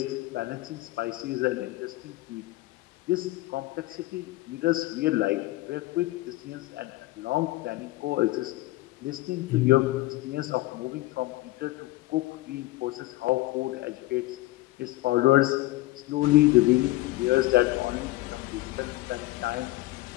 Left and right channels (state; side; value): quieter; right; 18.6 dB